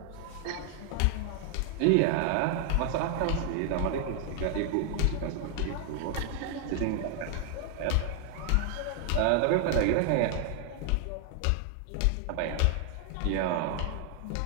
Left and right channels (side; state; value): both; different; correlation 0.00